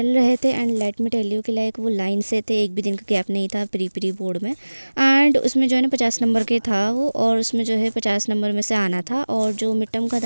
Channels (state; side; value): inverted; both; correlation -1.00